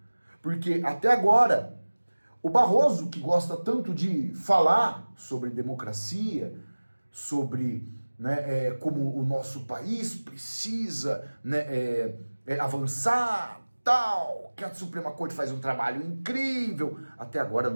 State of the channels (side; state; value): both; inverted; correlation -1.00